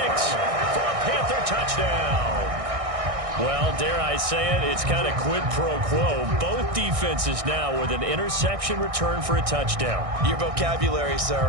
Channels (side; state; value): left; late; 1.6 ms